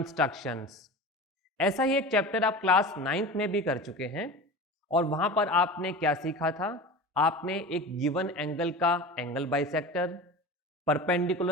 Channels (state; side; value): normal; both; correlation 0.32